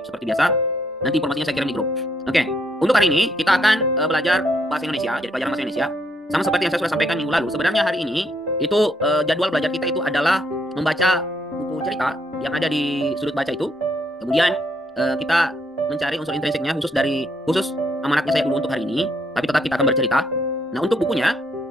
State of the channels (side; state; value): both; normal; correlation 0.72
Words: seperti biasa. Nanti informasinya saya kirim di grup. Oke, untuk hari ini kita akan belajar bahasa Indonesia, jadi pelajaran bahasa Indonesia. Sama seperti yang saya sudah sampaikan minggu lalu. Sebenarnya hari ini itu jadwal belajar kita itu adalah membaca buku cerita yang ada di sudut baca itu. Kemudian kita mencari unsur intrinsiknya khusus amanatnya saya dulu untuk hari ini. Tapi tetap kita akan bercerita. Nah untuk bukunya